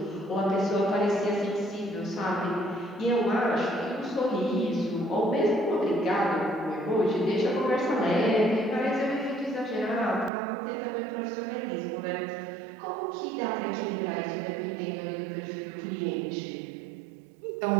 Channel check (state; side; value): drops out; left; at 10.3 s